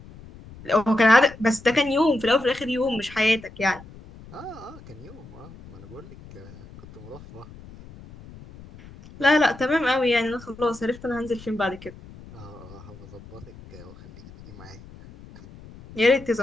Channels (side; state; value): left; noise; rumble, 19 dB below the sound